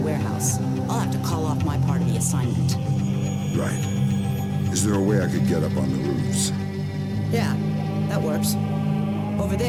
I'll have to call off my part of the assignment. Right. Is there a way I could get up on the roofs? Yeah, that works. Over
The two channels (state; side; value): identical; both; correlation 1.00